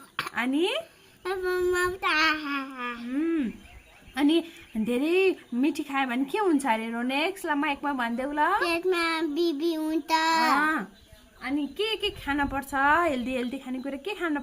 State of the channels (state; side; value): identical; both; correlation 1.00